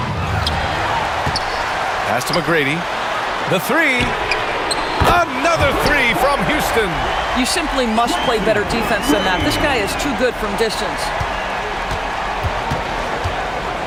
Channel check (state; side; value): identical; both; correlation 1.00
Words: Pass to McGrady. The three. Another three from Houston. You simply must play better defense than that. This guy is too good from distance.